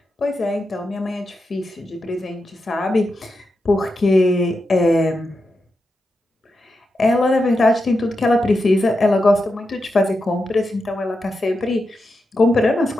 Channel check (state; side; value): normal; both; correlation 0.88